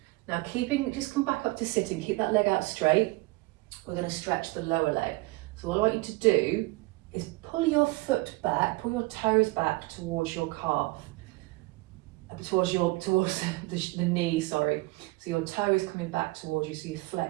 Now just come back up to sitting, keep that leg out straight. We're going to stretch the lower leg. So what I want you to do is pull your foot back, pull your toes back towards your calf, towards the knee, sorry. So your toe is coming back towards you, so you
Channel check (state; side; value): quieter; left; 22.5 dB